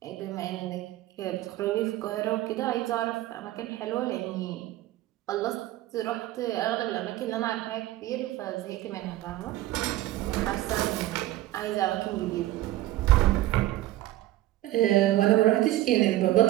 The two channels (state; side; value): quieter; left; 15.4 dB